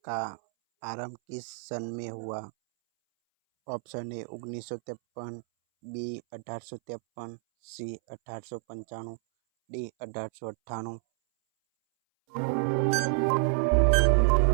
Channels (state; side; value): silent; left; 58 dB below the other